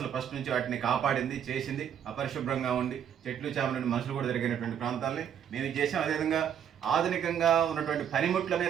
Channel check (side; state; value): left; quieter; 8.9 dB